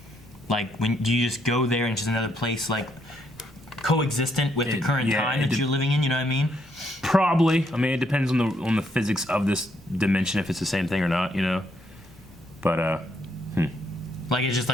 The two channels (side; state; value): both; normal; correlation 0.74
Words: Like, when do you just go there and it's just another place, like coexistent with the current time that you're living in? You know what I mean? Probably. I mean, it depends on the physics of this dimension if it's the same thing or not. You know. But Like it's just